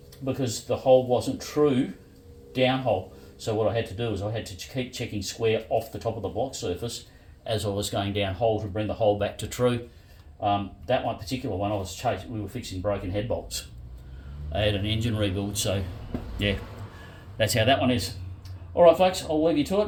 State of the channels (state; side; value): identical; both; correlation 1.00